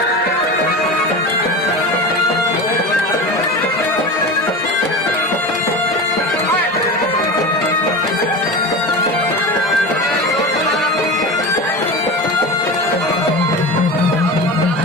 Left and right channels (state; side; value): normal; both; correlation 0.27